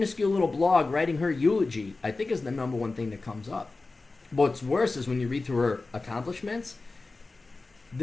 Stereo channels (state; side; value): quieter; right; 3.5 dB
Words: little blog writing her eulogy, I think is the number one thing that comes up. What's worse is when you read through her accomplishments,